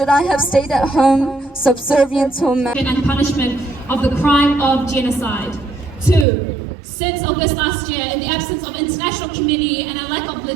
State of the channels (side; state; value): left; drops out; at 6.2 s